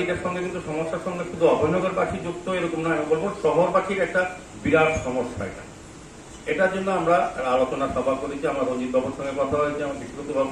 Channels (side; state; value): both; identical; correlation 1.00